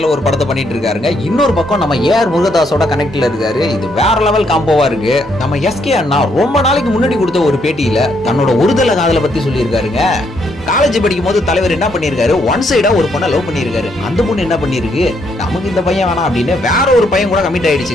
ஒரு படத்தை பண்ணிட்டு இருக்காருங்க, இன்னொரு பக்கம் நம்ம ஏஆர் முருகதாஸோட கனெக்ட்ல இருக்காரு. இது வேற லெவல் காம்போவா இருக்கு. நம்ம எஸ்கே அண்ணா ரொம்ப நாளைக்கு முன்னாடி கொடுத்த ஒரு பேட்டியில தன்னோட ஒருதலை காதலை பத்தி சொல்லியிருக்காருங்க. காலேஜ் படிக்கும் போது தலைவர் என்ன பண்ணிருக்காரு, ஒன் சைடா ஒரு பொண்ணை லவ் பண்ணிருக்காரு. அந்த பொண்ணு என்ன பண்ணிருக்கு, நமக்கு இந்த பையன் வேணாம் அப்படின்னு வேற ஒரு பையன் கூட கமிட்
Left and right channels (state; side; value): normal; both; correlation 0.73